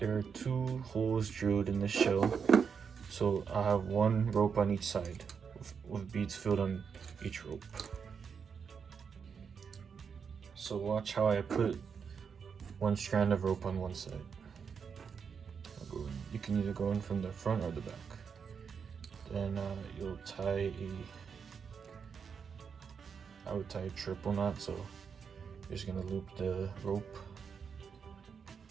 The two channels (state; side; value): quieter; left; 6.4 dB